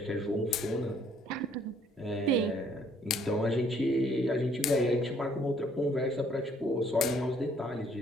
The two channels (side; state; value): both; normal; correlation 0.63